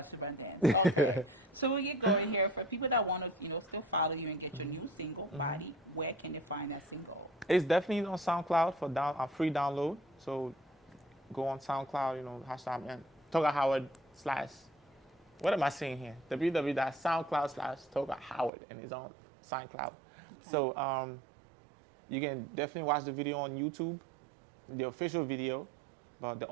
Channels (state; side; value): drops out; left; at 18.5 s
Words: dance. Okay, so we get going here. For people that want to, still follow you and get your new single, Body, where can they find that single? It's definitely on SoundCloud for free download. So go on SoundCloud, hashtag Togar Howard / what am I saying here? www.soundcloud/Togar Howard, and it's on SoundCloud. Okay. So you can definitely watch the video on YouTube, the official video. But the